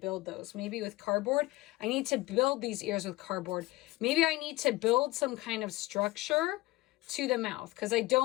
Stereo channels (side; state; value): right; quieter; 19.9 dB